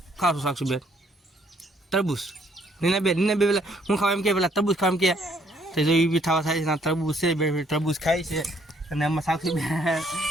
ખાશું સાક્ષી બેન તરબૂચ. નીના બે પેલા હું ખાવા એમ કે પેલા તરબૂચ ખાવા એમ કે તો જો એ બી થવા થાય છે. તરબૂચ છે, બે તરબૂચ ખાય છે. અને આમાં સાક્ષી બેન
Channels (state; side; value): normal; both; correlation 0.67